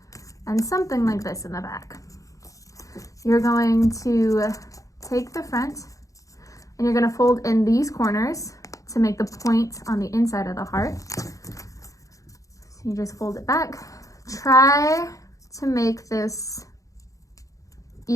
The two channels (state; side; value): late; right; 0.16 ms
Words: and something like this in the back. You're going to take the front and you're going to fold in these corners to make the point on the inside of the heart. So you just fold it back. Try to make this